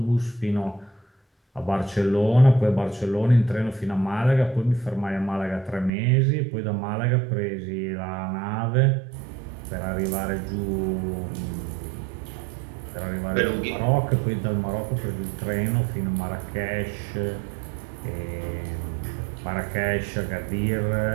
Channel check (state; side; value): drops out; left; at 5.9 s